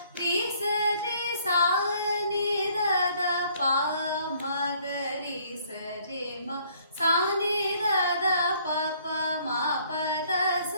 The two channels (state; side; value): inverted; both; correlation -0.62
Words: ரி ச ரி சா நி த த ப மா க ரி ச ரி மா சா நி த த ப ப மா ப த ச